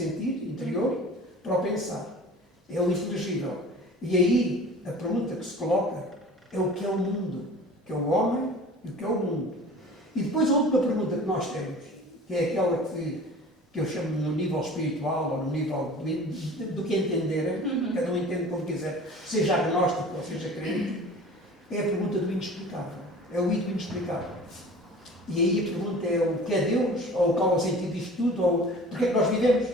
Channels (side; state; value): both; normal; correlation 0.42